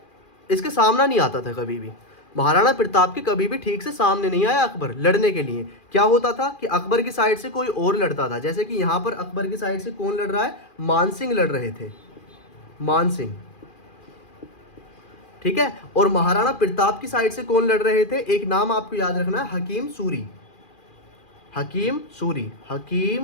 सामना नहीं आता था कभी भी। महाराणा प्रताप के कभी भी ठीक से सामने नहीं आया अकबर लड़ने के लिए। क्या होता था कि अकबर की साइड से कोई और लड़ता था, जैसे कि यहां पर अकबर की साइड से कौन लड़ रहा है? मानसिंह लड़ रहे थे, मानसिंह, ठीक है। और महाराणा प्रताप की साइड से कौन लड़ रहे थे? एक नाम आपको याद रखना है, हकीम सूरी, हकीम सूरी,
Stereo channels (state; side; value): late; right; 2.4 ms